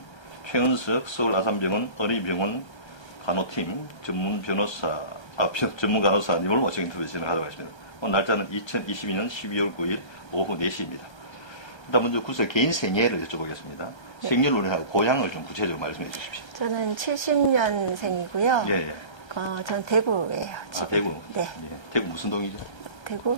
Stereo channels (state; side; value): late; right; 1.3 ms